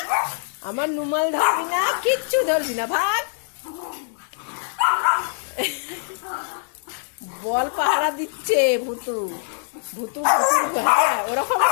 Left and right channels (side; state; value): right; silent; 63 dB below the other